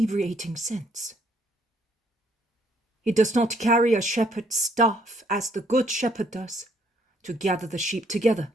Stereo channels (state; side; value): normal; both; correlation 0.67